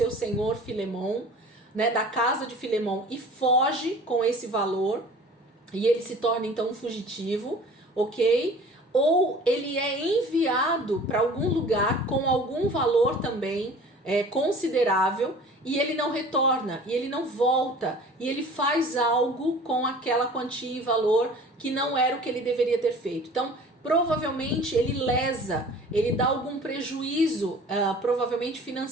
senhor Filemon, né, da casa de Filemon, e foge com esse valor, e ele se torna então um fugitivo, ok? Ou ele é enviado para algum lugar com algum valor também considerável, e ele não retorna, e ele não volta, e ele faz algo com aquela quantia e valor que não era o que ele deveria ter feito. Então, provavelmente ele lesa, ele dá algum prejuízo, provavelmente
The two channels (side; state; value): both; normal; correlation 0.45